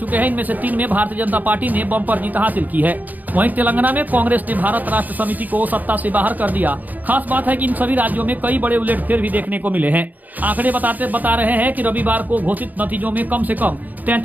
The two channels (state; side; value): late; left; 0.082 ms